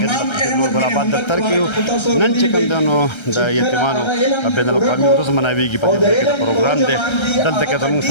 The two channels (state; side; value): late; right; 1.3 ms